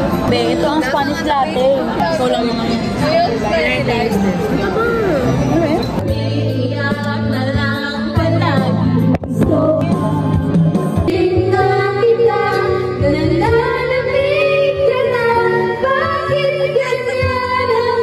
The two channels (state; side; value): identical; both; correlation 1.00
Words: Be, ito ang Spanish latte. So lang naman.